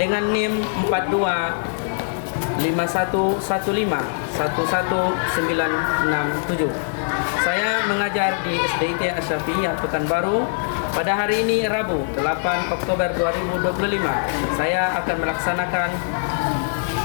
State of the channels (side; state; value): right; silent; 64 dB below the other